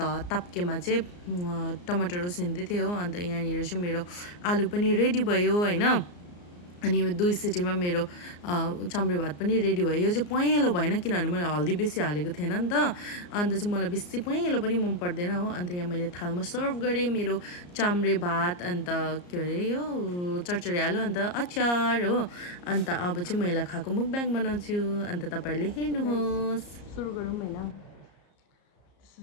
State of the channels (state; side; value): late; right; 34 ms